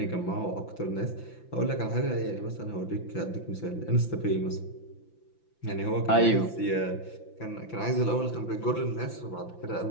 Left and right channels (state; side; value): late; right; 5.9 ms